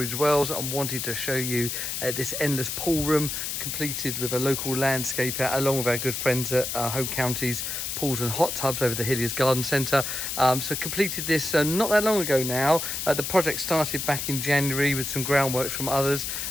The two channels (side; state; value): left; noise; hiss, 3 dB below the sound